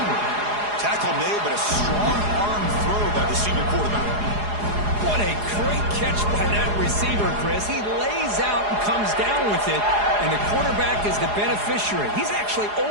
Tackle made, but a strong arm throw by the senior quarterback. What a great catch by that receiver, Chris. He lays out and comes down with it, and the quarterback is the beneficiary. He's actually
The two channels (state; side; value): late; left; 4.8 ms